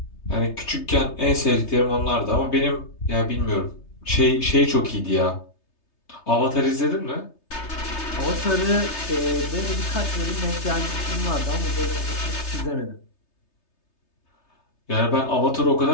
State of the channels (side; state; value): right; late; 3.3 ms